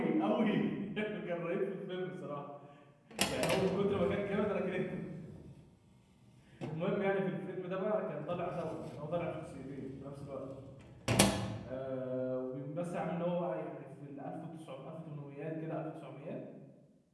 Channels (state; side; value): identical; both; correlation 1.00